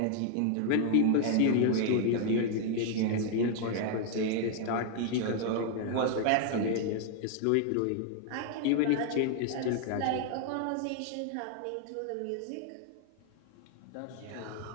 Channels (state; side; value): different; both; correlation 0.00